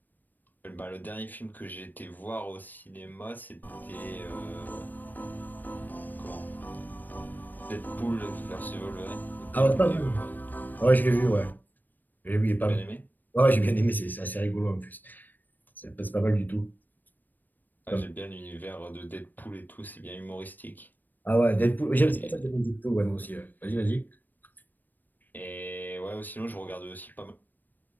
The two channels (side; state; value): right; late; 0.088 ms